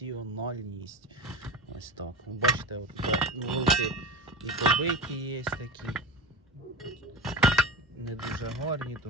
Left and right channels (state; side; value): normal; both; correlation 0.26